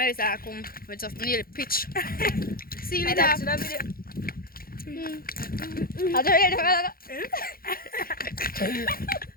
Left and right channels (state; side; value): late; right; 0.43 ms